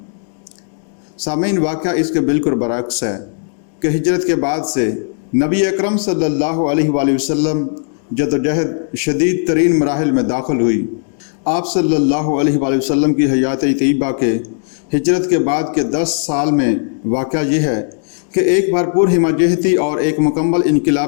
سامعین، واقعہ اس کے بالکل برعکس ہے کہ ہجرت کے بعد سے نبی اکرم صلی اللہ علیہ وآلہ وسلم جدوجہد شدید ترین مراحل میں داخل ہوئی۔ آپ صلی اللہ علیہ وآلہ وسلم کی حیات طیبہ کے ہجرت کے بعد کے 10 سال میں واقعہ یہ ہے کہ ایک بھرپور ہمہ اور ایک مکمل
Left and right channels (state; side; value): silent; right; digital silence